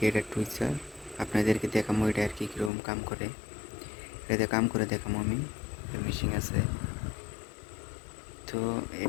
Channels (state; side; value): drops out; right; at 2.7 s